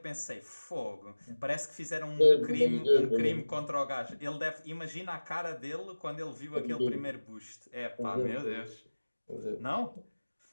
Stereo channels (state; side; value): inverted; both; correlation -1.00